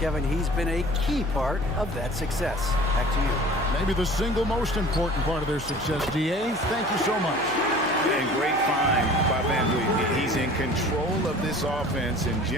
he's been a key part of that success. Back to you. Maybe the single most important part of their success, D.A. Thank you so much. And great find by Van Vliet. He's in control of this offense and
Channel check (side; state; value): left; noise; hum, 18 dB below the sound